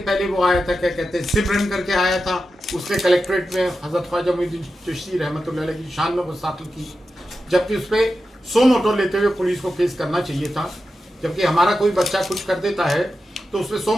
वो आया था, क्या कहते हैं, सिमरन करके आया था। उसने कलेक्ट्रेट में हजरत ख्वाजा मोइनुद्दीन चिश्ती रहमतुल्लाह अलैह की शान में गुस्ताखी की, जबकि उस पर 100 मोटो लेते हुए पुलिस को केस करना चाहिए था। जबकि हमारा कोई बच्चा कुछ कर देता है तो उसमें 100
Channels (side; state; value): both; normal; correlation 0.91